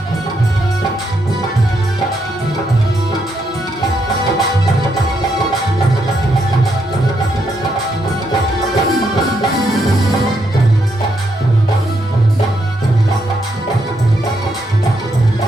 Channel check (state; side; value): normal; both; correlation 0.78